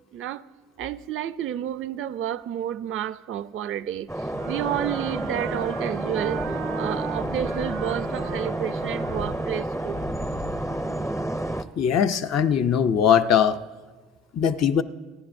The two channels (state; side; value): normal; both; correlation 0.45